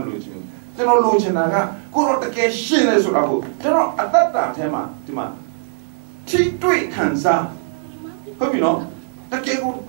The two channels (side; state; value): left; silent; 61 dB below the other